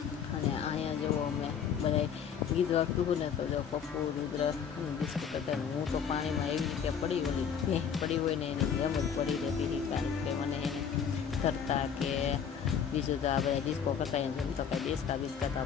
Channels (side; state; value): right; quieter; 7.5 dB